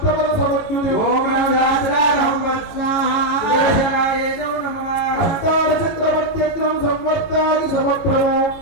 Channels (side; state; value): right; late; 18 ms